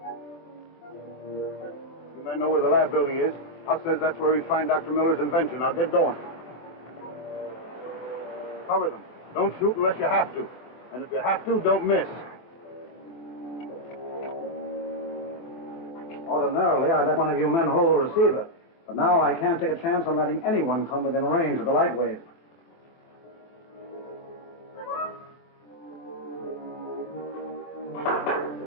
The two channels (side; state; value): right; late; 24 ms